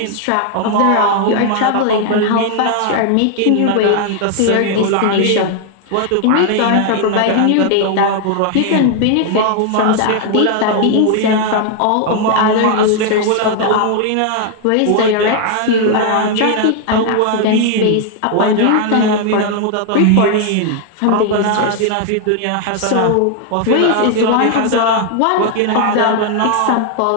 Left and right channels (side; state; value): both; different; correlation 0.00